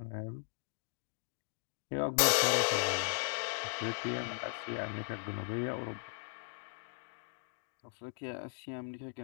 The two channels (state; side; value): silent; right; digital silence